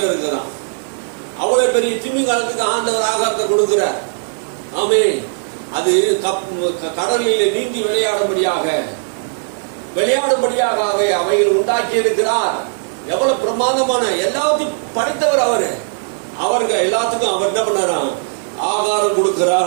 இருக்குதான். அவ்வளவு பெரிய திமிங்கலத்துக்கு ஆண்டவர் ஆகாரத்தை கொடுக்கிறார். ஆமென். அது கடலில் நீந்தி விளையாடும்படியாக அவைகள் உண்டாக்கி இருக்கிறார். எவ்வளவு பிரமாதமான, எல்லாத்தையும் படைத்தவர் அவரு. அவர்கள் எல்லாத்துக்கும் அவர் என்ன பண்ணாராம்? ஆகாரம்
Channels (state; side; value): silent; left; digital silence